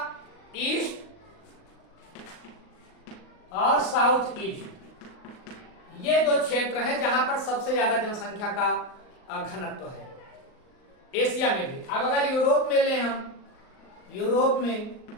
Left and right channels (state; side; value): late; right; 38 ms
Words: ईस्ट और साउथ ईस्ट, ये 2 क्षेत्र हैं जहां पर सबसे ज्यादा जनसंख्या का घनत्व है, एशिया में भी। अब अगर यूरोप में ले हम, यूरोप